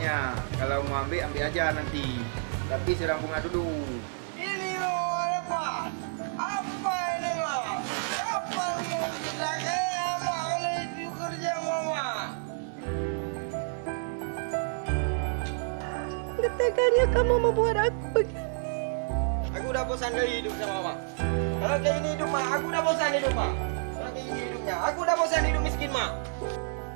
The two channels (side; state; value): left; silent; 58 dB below the other